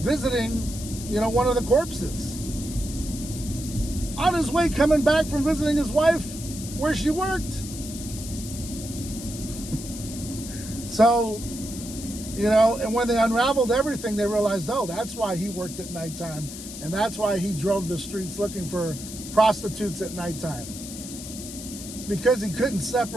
one of the corpses. On his way coming back from visiting his wife where she worked. So, and when they unraveled everything, they realized, oh, that's why he worked at nighttime. And that's why he drove the streets looking for prostitutes at nighttime. Because he couldn't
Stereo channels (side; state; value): left; noise; hiss, 11 dB below the sound